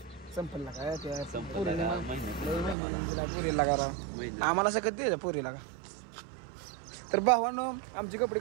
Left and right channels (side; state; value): left; drops out; at 2.8 s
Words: संपलला काय ते पुरीला करा आम्हाला सगळं द्यायचं पुरीला का. तर भावांनो आमची कपडे